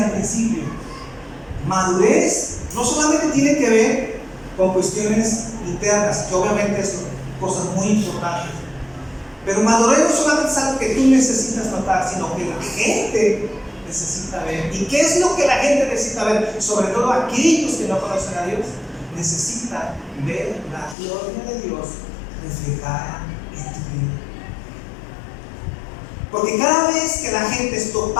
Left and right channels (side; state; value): right; drops out; at 21.0 s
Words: al principio, madurez no solamente tiene que ver con cuestiones internas, que obviamente son cosas muy importantes, pero madurez no solamente es algo que tú necesitas notar, sino que la gente necesita ver. ¿Y qué es lo que la gente necesita ver? Sobre todo aquellos que no conocen a Dios, necesitan ver la gloria de Dios reflejada en tu vida. Porque cada vez que la gente es